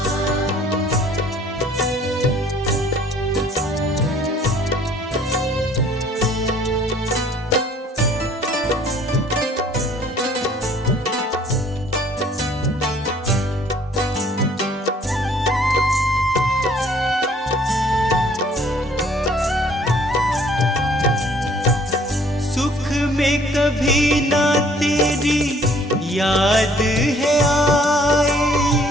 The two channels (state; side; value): normal; both; correlation 0.58